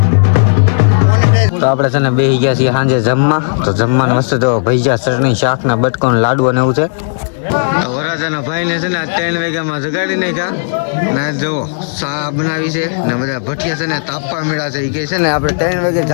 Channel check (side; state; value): right; silent; digital silence